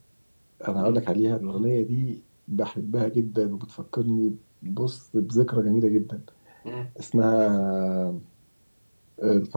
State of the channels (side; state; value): both; inverted; correlation -1.00